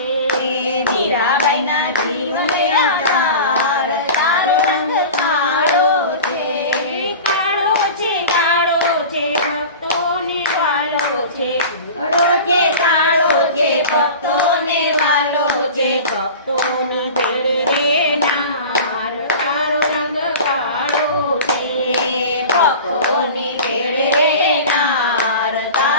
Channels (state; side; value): inverted; both; correlation -0.35